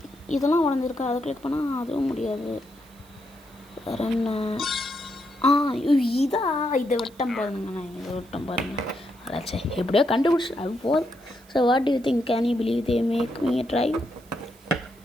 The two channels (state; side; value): noise; right; hiss, 27 dB below the sound